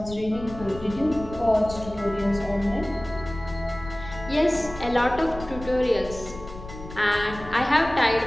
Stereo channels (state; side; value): noise; left; rumble, 14 dB below the sound